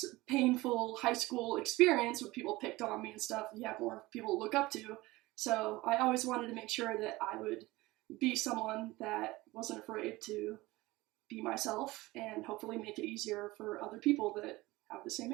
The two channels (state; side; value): quieter; left; 20.0 dB